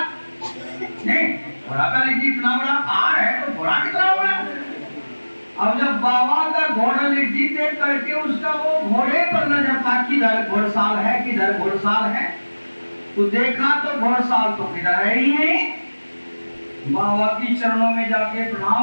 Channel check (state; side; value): inverted; both; correlation -1.00